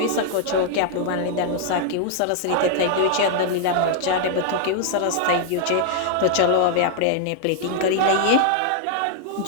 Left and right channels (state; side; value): different; both; correlation -0.01